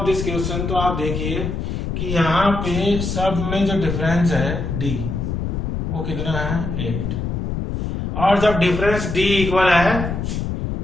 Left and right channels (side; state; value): left; noise; rumble, 3 dB below the sound